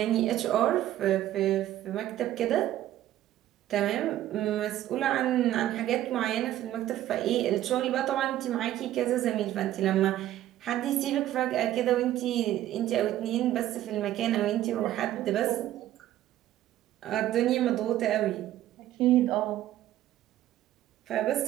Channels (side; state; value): left; quieter; 13.3 dB